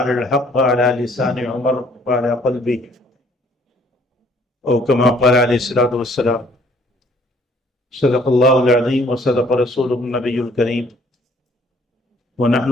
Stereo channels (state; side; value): normal; both; correlation 0.60